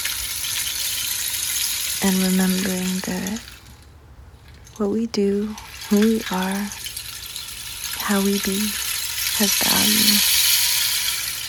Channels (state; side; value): identical; both; correlation 1.00